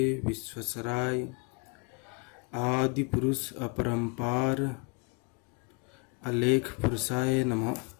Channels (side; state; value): right; quieter; 32.1 dB